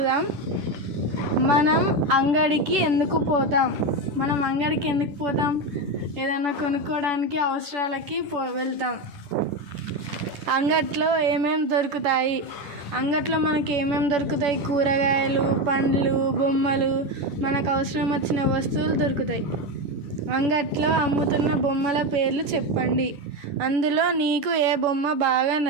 మనం అంగడికి ఎందుకు పోతాం? ఏదైనా కొనుక్కోవడానికి, అవసరాలకి వెళ్తాం. అంగట్లో ఏమేమి దొరుకుతాయి? అంగట్లో మనకి ఏమేమి దొరుకుతాయి? కూరగాయలు, పండ్లు, బొమ్మలు, మనకు అవసరం వచ్చిన వస్తువులు దొరుకుతాయి. అంగట్లో అమ్ముతున్న బొమ్మల పేర్లు చెప్పండి. అందులో నీకు ఏ బొమ్మ బాగా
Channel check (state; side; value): late; left; 10 ms